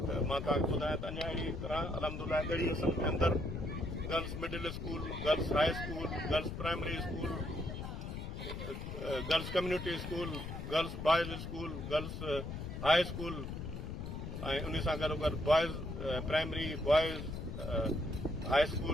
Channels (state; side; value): noise; left; rumble, 6 dB below the sound